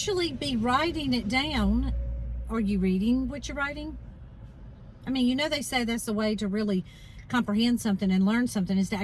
be writing it down. Are you reading what you're writing? I mean, you know, they say that's the way to really comprehend something and learn something is to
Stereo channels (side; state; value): both; identical; correlation 1.00